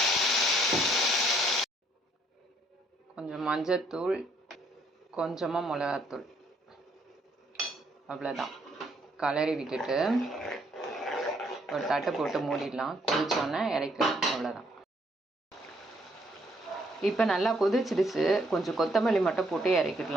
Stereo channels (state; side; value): normal; both; correlation 0.68